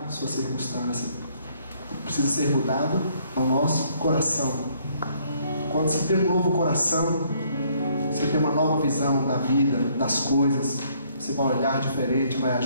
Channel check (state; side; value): inverted; both; correlation -0.66